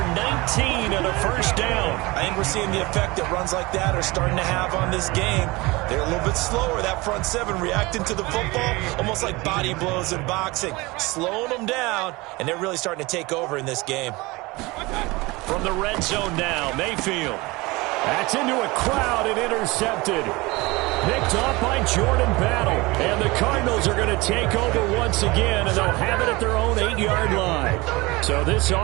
19 and a 1st down. I think we're seeing the effect that runs like that are starting to have on this game. They're a little bit slower, that front 7, reacting to the football, almost like body blows in boxing, slowing them down, and they're really starting to take over in this game. From the red zone now, Mayfield. That's into a crowd and intercepted. Picked off by Jordan Battle. And the Cardinals are going to take over once again, and they'll have it at their own 8-yard line. So this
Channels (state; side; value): quieter; left; 23.0 dB